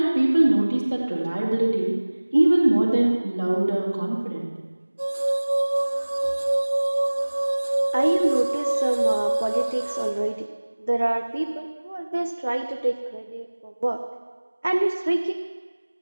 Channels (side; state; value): both; inverted; correlation -1.00